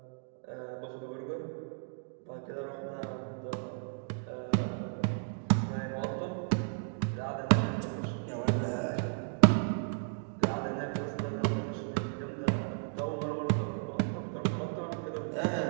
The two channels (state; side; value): silent; left; digital silence